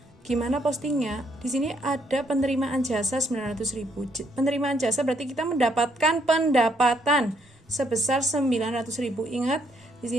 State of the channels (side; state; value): both; normal; correlation 0.71